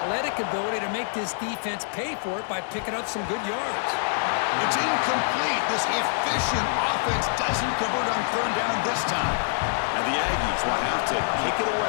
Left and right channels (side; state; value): right; silent; 61 dB below the other